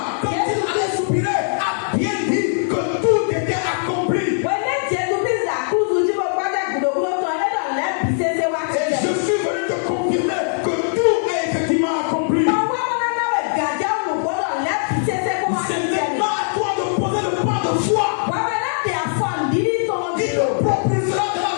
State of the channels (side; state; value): right; silent; digital silence